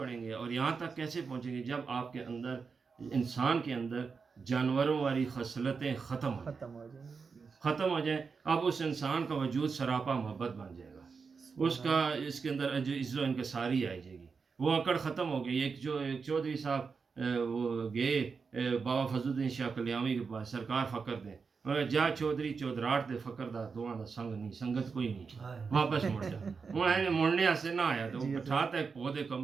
گے اور یہاں تک کیسے پہنچیں گے جب آپ کے اندر، انسان کے اندر جانوروں والی خصلتیں ختم ہو جائیں. اب اس انسان کا وجود سراپا محبت بن جائے گا. اس کا اس کے اندر جو عزت و انکساری آئی جائے گی. وہ اکڑ ختم ہو گئی. ایک چودھری صاحب وہ گئے بابا فضل الدین شاہ کلیامی کے پاس، سرکار فقر دیں. جا چودھری چودراہٹ دے فقر دا دواں دا سنگ نہیں، سنگت کوئی نہیں، واپس مڑ جا. انہیں مڑنے سے نہ آیا تو بٹھاتا ایک پودے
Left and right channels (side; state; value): left; quieter; 5.2 dB